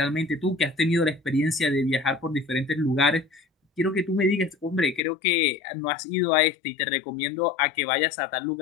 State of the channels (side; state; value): right; drops out; at 5.0 s